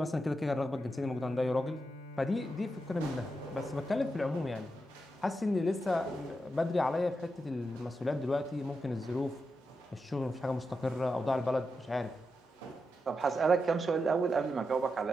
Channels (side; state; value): both; normal; correlation 0.87